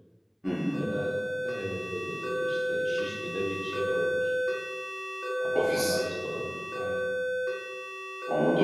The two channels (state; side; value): identical; both; correlation 1.00